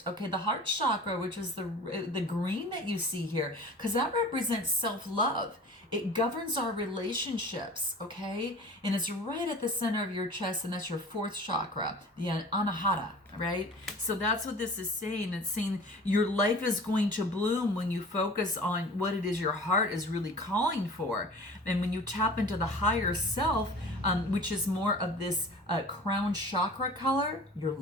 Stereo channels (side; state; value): both; normal; correlation 0.41